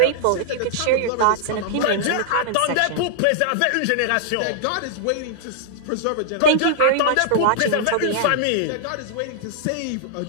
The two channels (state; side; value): different; both; correlation -0.01